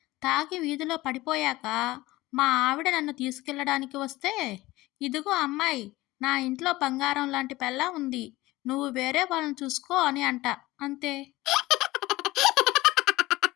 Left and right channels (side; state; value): right; quieter; 18.9 dB